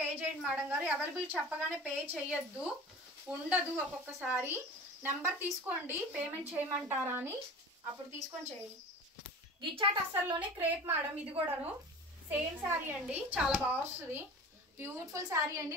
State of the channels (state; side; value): normal; both; correlation 0.37